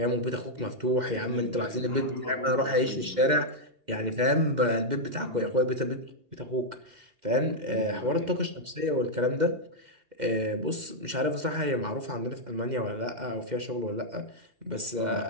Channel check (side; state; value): left; late; 2.1 ms